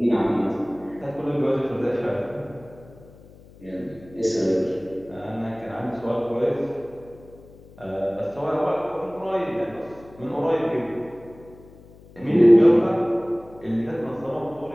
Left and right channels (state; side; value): noise; left; hum, 23 dB below the sound